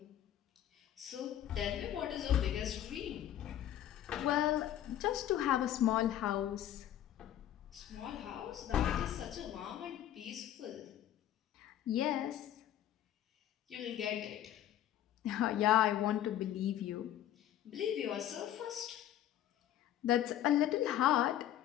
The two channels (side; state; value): right; quieter; 11.7 dB